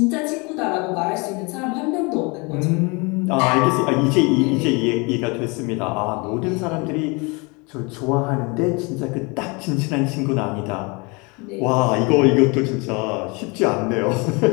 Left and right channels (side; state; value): right; quieter; 29.0 dB